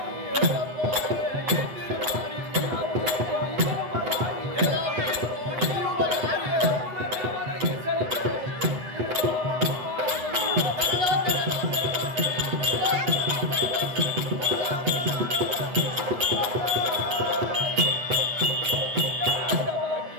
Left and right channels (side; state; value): left; late; 8.1 ms